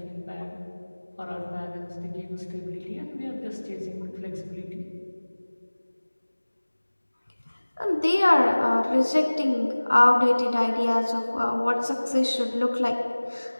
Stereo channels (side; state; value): both; inverted; correlation -1.00